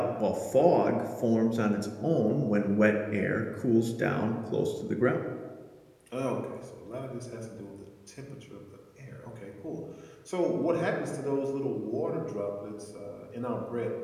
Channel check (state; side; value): identical; both; correlation 1.00